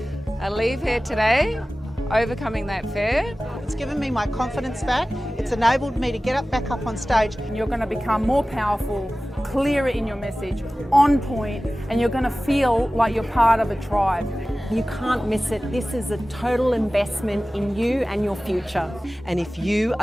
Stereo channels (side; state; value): both; normal; correlation 0.97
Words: I leave here today, overcoming that fear. It's given me my confidence back. It's enabled me to get back up on stage. And you're going to become more powerful, clearer in your message, on point, and you're going to feel like you're part of a tribe. You can't miss it. This is a total investment in you and your future. And if you